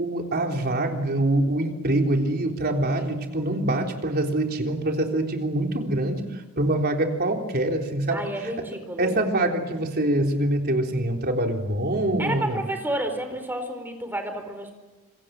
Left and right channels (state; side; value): normal; both; correlation 0.42